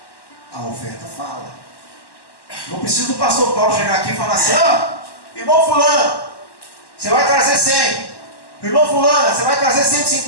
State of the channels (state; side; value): late; right; 1.1 ms